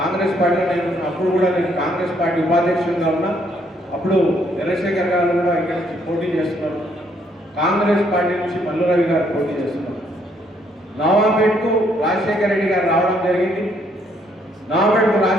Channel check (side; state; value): both; normal; correlation 0.69